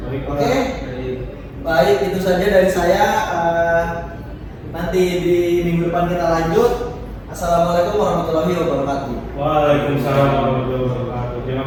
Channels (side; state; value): both; identical; correlation 1.00